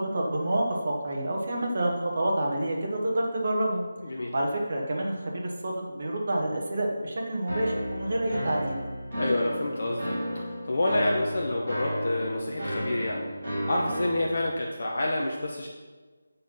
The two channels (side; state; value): both; inverted; correlation -0.92